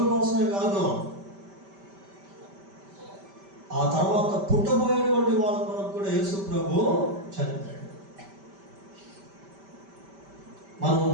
కోసమే కాదు, ఆ తర్వాత పుట్టబోయేటువంటి వాళ్ళ కొరకు కూడా యేసుప్రభు చనిపోయాడు. మనం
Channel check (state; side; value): late; left; 5.1 ms